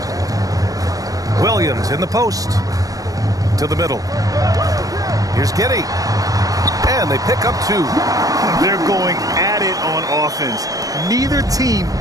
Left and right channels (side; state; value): left; late; 0.17 ms